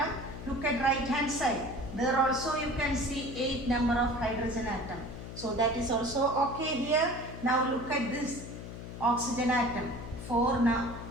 Look at right hand side. There also you can see 8 number of hydrogen atom. So that is also okay here. Now look at this oxygen atom. 4 now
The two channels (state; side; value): noise; left; hum, 10 dB below the sound